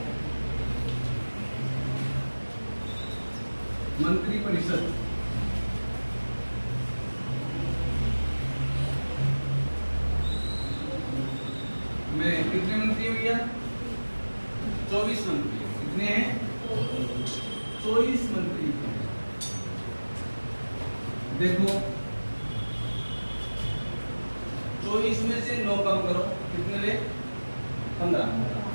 मंत्रिपरिषद बोले कितने मंत्री है भैया? 24 मंत्री। कितने हैं? 24 मंत्री। देखो 24 में से 9 कम करो, कितने ले? 15।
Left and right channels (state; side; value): inverted; both; correlation -1.00